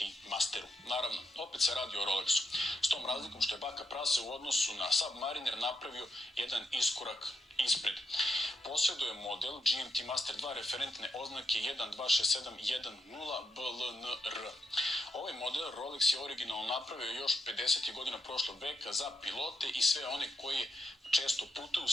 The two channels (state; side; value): normal; both; correlation 0.82